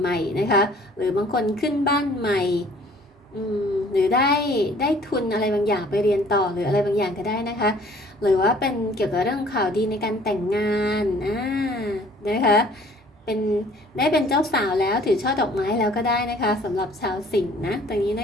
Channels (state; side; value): normal; both; correlation 0.55